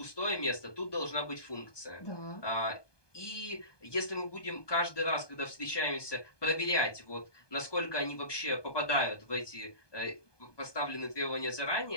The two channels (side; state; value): right; late; 1.2 ms